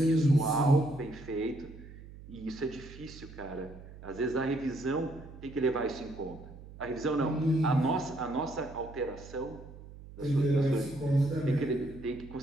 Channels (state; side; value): noise; right; hum, 16 dB below the sound